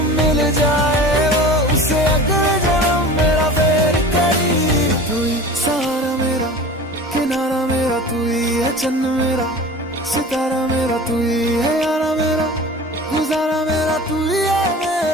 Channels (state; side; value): normal; both; correlation 0.37